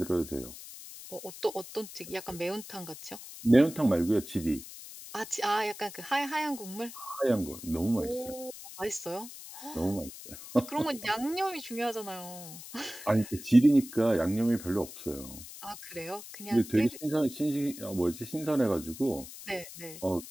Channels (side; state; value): left; noise; hiss, 14 dB below the sound